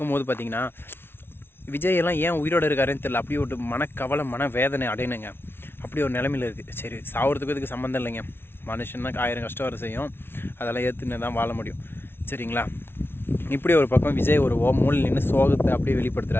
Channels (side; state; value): right; late; 0.11 ms